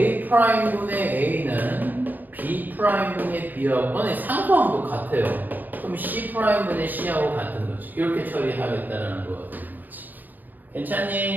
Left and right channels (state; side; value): late; left; 0.085 ms